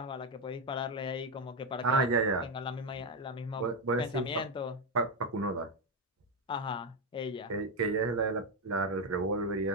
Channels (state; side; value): normal; both; correlation 0.07